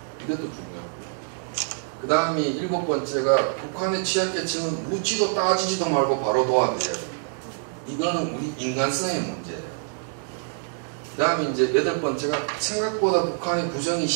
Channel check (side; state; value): left; silent; digital silence